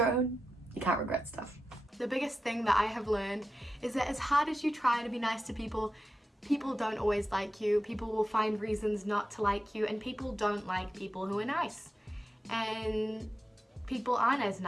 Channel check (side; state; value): both; normal; correlation 0.91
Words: You can't regret stuff. The biggest thing that I have learned is that as hard as you try to be nice to people, people don't always like you. People will find reasons not to like you, and people don't like people who are nice. And people aren't as